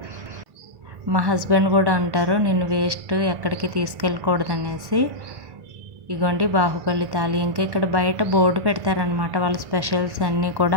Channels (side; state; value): left; late; 1.1 ms